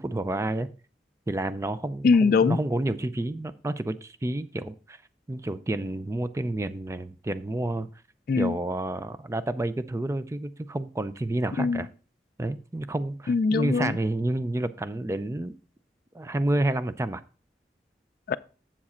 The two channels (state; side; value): normal; both; correlation 0.76